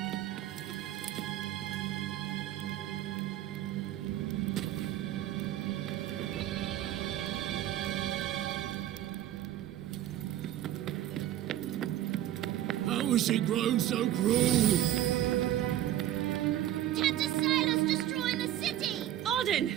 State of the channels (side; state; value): left; quieter; 12.6 dB